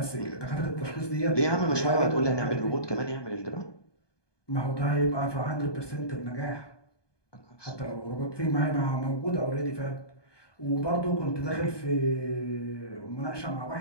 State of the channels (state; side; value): late; right; 1.2 ms